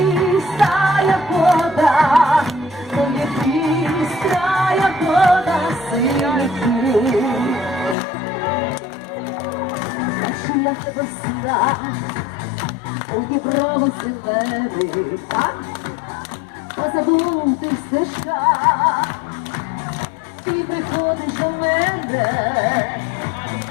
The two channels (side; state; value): right; drops out; at 8.0 s